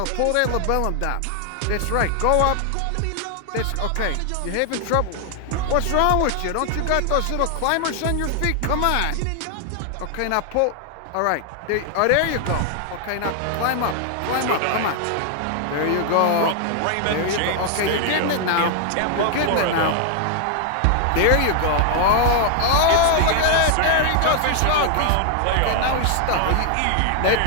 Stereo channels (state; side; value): different; both; correlation 0.00